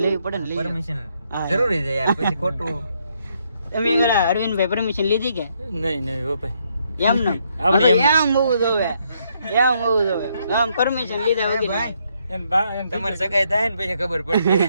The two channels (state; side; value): inverted; both; correlation -0.74